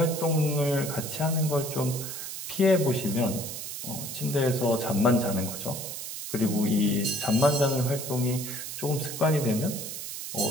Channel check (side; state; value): right; noise; hiss, 7 dB below the sound